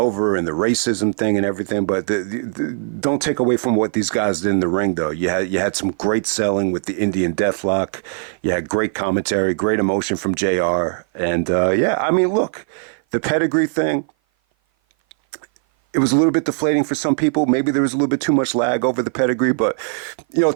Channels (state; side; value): silent; left; 57 dB below the other